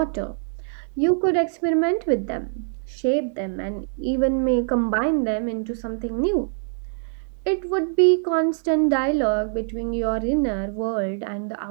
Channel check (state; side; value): silent; left; digital silence